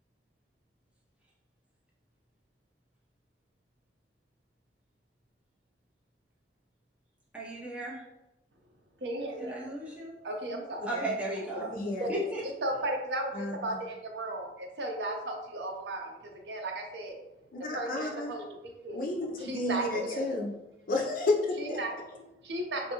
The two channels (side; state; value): both; normal; correlation 0.27